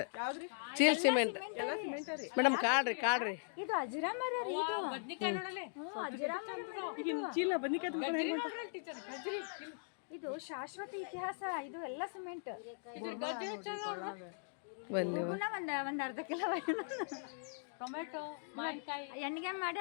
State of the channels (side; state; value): right; silent; digital silence